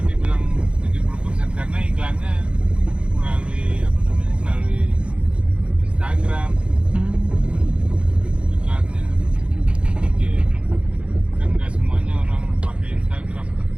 dibilang 70%? Karena iklannya melalui apa namanya, melalui Instagram iklannya. Gitu. Kan nggak semuanya orang pakai Instagram.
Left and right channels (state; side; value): late; left; 0.059 ms